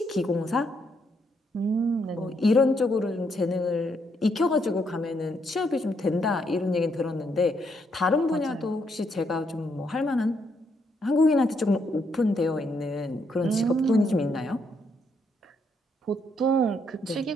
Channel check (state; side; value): normal; both; correlation 0.75